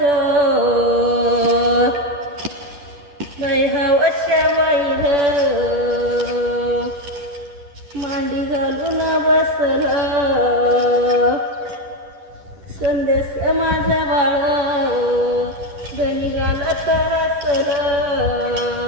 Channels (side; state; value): left; late; 10 ms